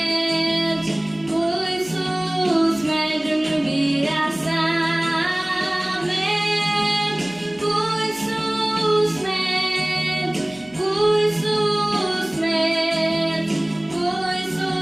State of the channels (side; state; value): left; noise; hum, 26 dB below the sound